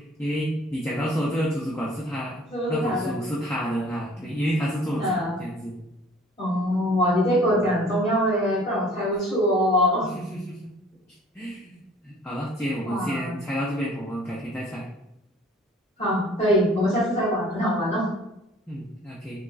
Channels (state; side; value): normal; both; correlation 0.52